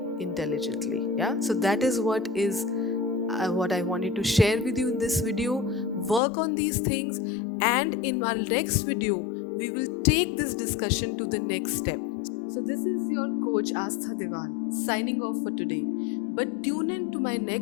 intelligently. Yeah, so that is what I wanted to share with you in this video. Work on these things, and in our next video, we will take this discussion to the next step. So, this is your coach Astha Devan signing off for today. But tune in to my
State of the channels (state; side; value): drops out; right; at 6.2 s